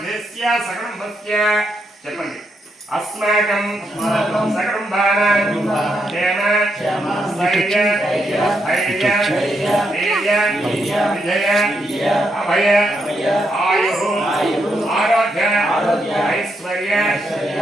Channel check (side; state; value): both; normal; correlation 0.80